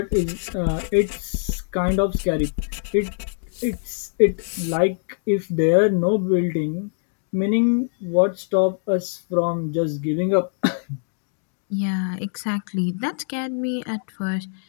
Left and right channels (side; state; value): right; silent; digital silence